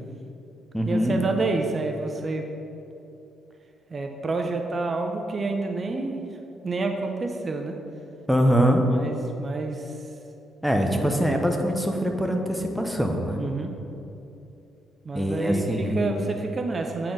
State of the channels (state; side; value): normal; both; correlation 0.84